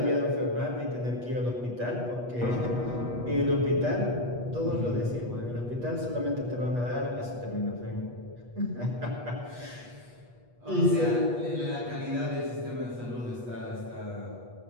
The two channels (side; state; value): left; late; 8.3 ms